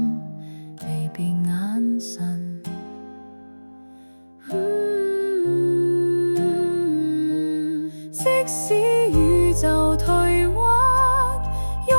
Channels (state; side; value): inverted; both; correlation -1.00